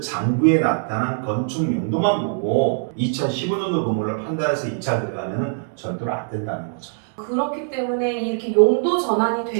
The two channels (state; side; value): silent; left; digital silence